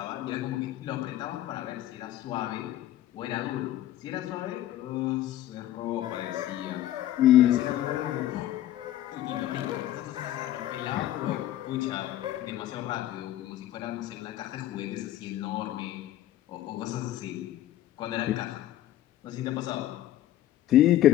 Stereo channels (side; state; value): right; quieter; 13.3 dB